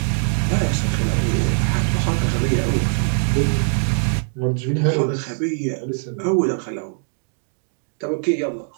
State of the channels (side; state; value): left; silent; digital silence